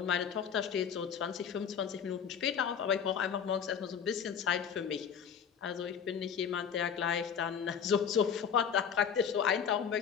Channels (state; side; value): quieter; right; 7.5 dB